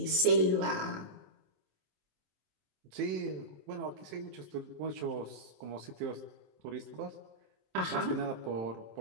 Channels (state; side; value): late; left; 27 ms